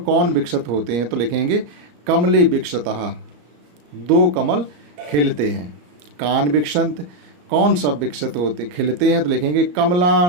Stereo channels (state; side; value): late; left; 34 ms